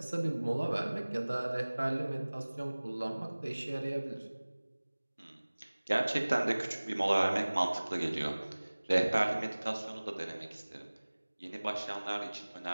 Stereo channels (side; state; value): both; inverted; correlation -1.00